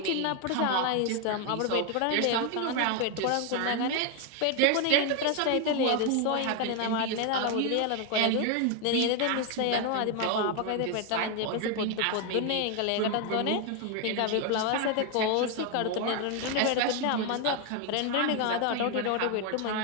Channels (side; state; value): both; different; correlation 0.01